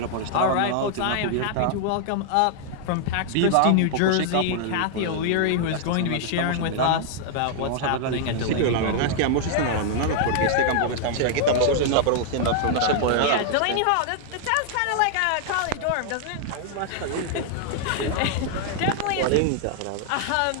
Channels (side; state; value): both; different; correlation 0.00